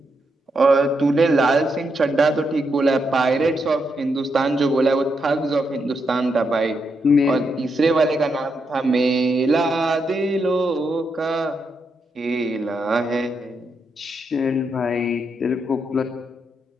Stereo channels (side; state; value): both; normal; correlation 0.81